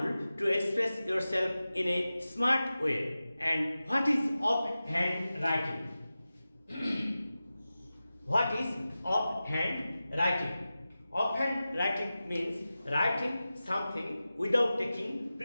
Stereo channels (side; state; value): both; inverted; correlation -0.95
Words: to express yourself in a smart way. And what is offhand writing? What is offhand writing? Offhand writing means writing something without taking